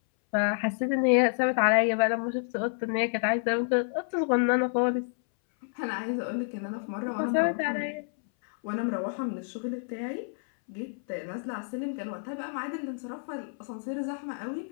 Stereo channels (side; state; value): right; silent; 59 dB below the other